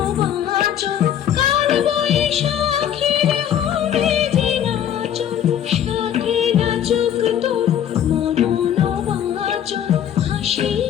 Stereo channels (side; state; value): right; quieter; 9.8 dB